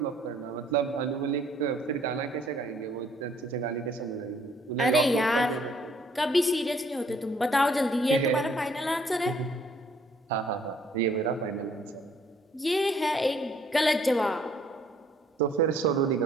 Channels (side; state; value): both; normal; correlation 0.63